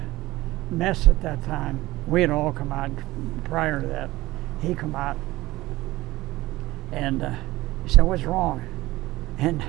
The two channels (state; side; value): quieter; left; 18.3 dB